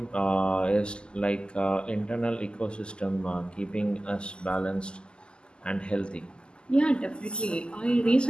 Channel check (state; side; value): late; right; 0.049 ms